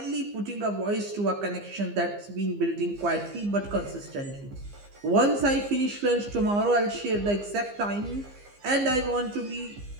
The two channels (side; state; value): left; late; 15 ms